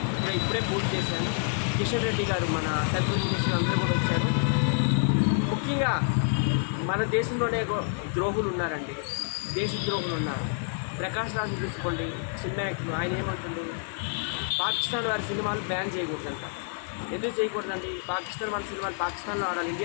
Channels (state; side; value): silent; right; 59 dB below the other